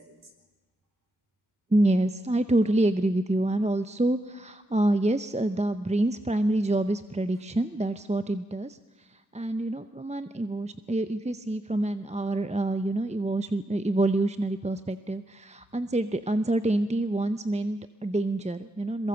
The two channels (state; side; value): normal; both; correlation 0.84